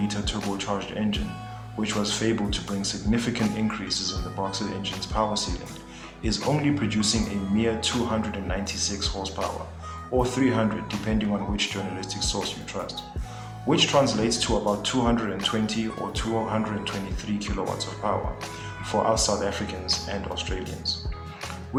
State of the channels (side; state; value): both; identical; correlation 1.00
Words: turbocharged engine, which was fabled to bring significant increases in the Boxer engine's power ceiling, is only producing a mere 296 horsepower, or 300 depending on which journalistic source you trust, which translates to about 220 or 223 kilowatts of power for us South Africans and Australians,